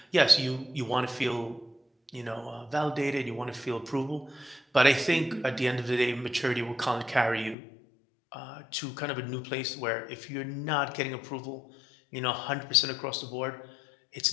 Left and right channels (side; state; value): right; drops out; at 7.6 s